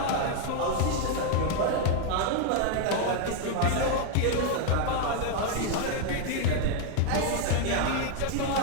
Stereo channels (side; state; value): both; different; correlation 0.01